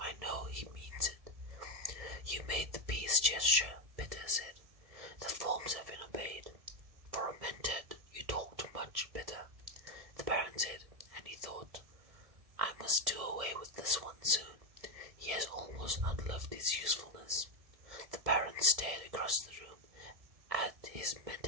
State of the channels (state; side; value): late; left; 1.7 ms